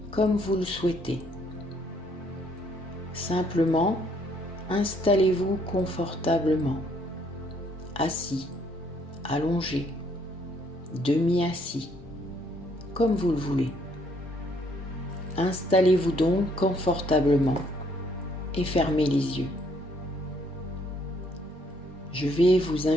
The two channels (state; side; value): normal; both; correlation 0.67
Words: comme vous le souhaitez. Simplement, installez-vous confortablement, assis, allongé, demi-assis, comme vous le voulez. Installez-vous donc confortablement et fermez les yeux. Je vais vous